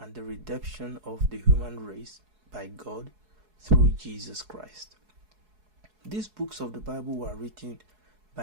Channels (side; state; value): left; late; 4.7 ms